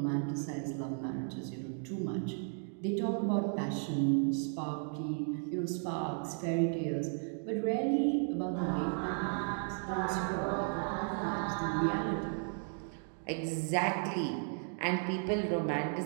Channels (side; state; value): left; silent; 55 dB below the other